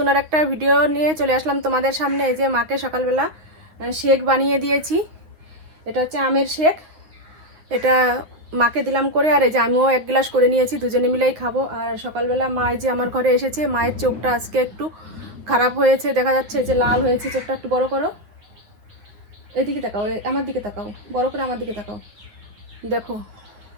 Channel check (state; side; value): late; left; 9.3 ms